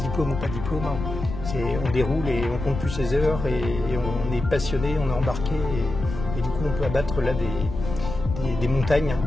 ou pas diplôme, on déroule et on compte plus ses heures et on est passionné, on est embarqué et du coup on peut abattre là des montagnes.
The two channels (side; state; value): left; noise; rumble, 7 dB below the sound